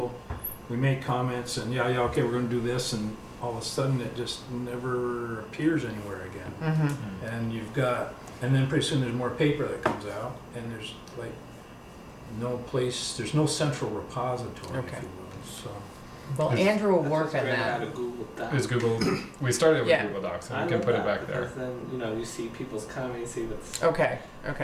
we make comments and yeah, okay, we're gonna do this, and all of a sudden it just never appears anywhere again. Mm-hmm. And then pretty soon there's more paper that comes out, and there's like there's no central repository, Okay. if you will, so. Well, Is- Andrew will That's work what's on great that. about a Google Doc. is Google, we started with Yeah. Google Docs, I and we can love put it that back there. because then, you know, you see people's comments, you see that's Okay,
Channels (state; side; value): identical; both; correlation 1.00